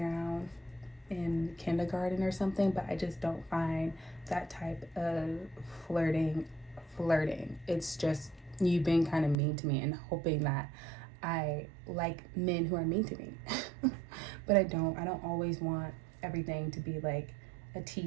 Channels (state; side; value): drops out; left; at 9.3 s